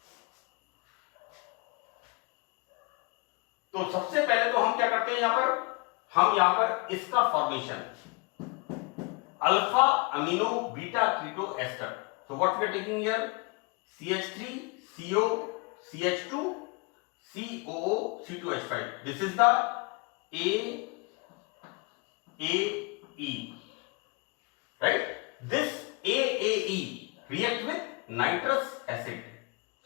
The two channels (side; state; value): right; quieter; 29.3 dB